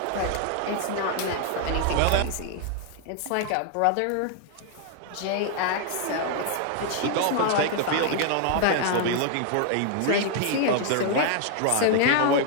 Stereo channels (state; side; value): different; both; correlation 0.00